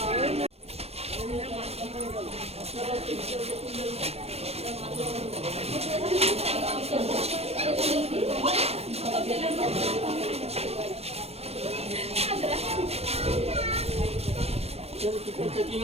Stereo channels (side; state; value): left; late; 0.30 ms